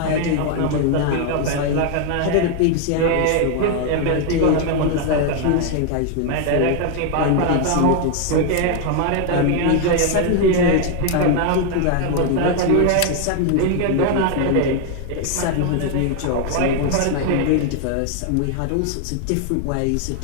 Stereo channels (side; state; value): both; different; correlation 0.00